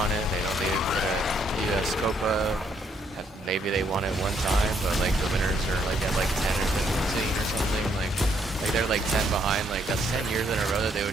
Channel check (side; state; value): both; normal; correlation 0.71